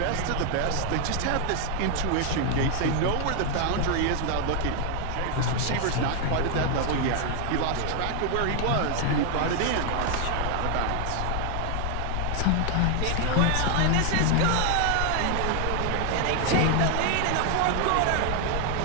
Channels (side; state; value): both; different; correlation 0.00